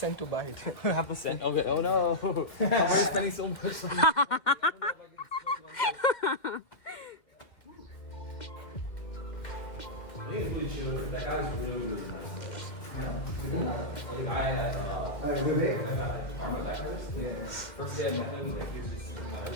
to buy it. Half a cent. Okay. Oh no. I'm already spending so much. I think it's really chill. That guy was really good. The guy at Karma that first. Yeah. First day I met him, like he was just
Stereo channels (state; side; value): late; right; 2.1 ms